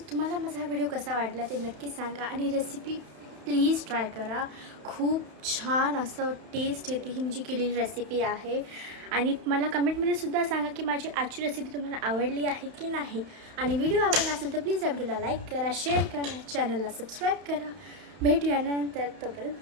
तुम्हाला माझा हा व्हिडिओ कसा वाटला ते नक्की सांगा आणि रेसिपी प्लीज ट्राय करा. खूप छान असं टेस्ट येते ही मी जी केलेली रेसिपी आहे. आणि मला कमेंटमध्ये सुद्धा सांगा की माझी आजची रेसिपी तुम्हाला आवडली आहे की नाही. आणि व्हिडिओ आवडला असेल तर प्लीज या व्हिडिओला लाईक करा, शेअर करा, चॅनलला सबस्क्राईब करा. भेटूया नंतर, तोपर्यंत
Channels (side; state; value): left; late; 31 ms